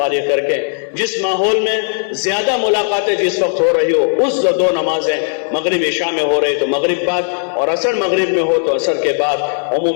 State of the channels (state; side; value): silent; right; 61 dB below the other